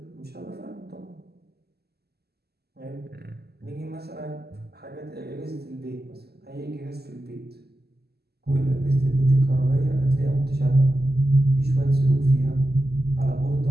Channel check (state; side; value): late; left; 0.46 ms